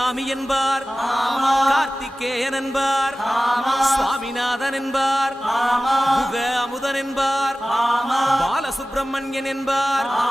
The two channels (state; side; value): normal; both; correlation 0.96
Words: என்பார், கார்த்திகேயன் என்பார், சுவாமிநாதன் என்பார், குக அமுதன் என்பார், பாலசுப்பிரமணியன் என்பார்,